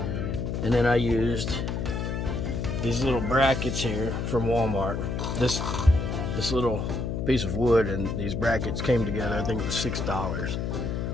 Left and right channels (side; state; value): left; noise; hum, 2 dB below the sound